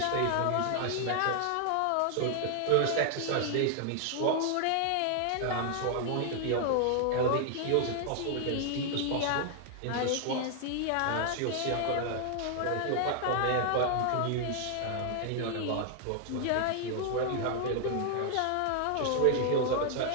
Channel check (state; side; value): different; both; correlation 0.00